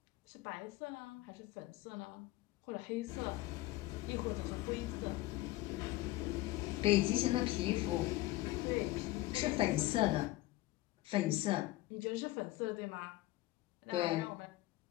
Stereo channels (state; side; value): quieter; right; 17.7 dB